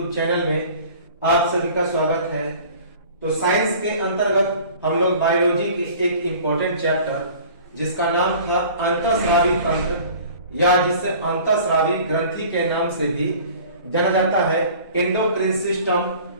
चैनल में आप सभी का स्वागत है। तो साइंस के अंतर्गत हम लोग बायोलॉजी की एक इम्पोर्टेंट चैप्टर जिसका नाम था अंतःस्रावी तंत्र या जिसे अंतःस्रावी ग्रंथि के नाम से भी जाना जाता है, एंडोक्राइन सिस्टम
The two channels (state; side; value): inverted; both; correlation -0.46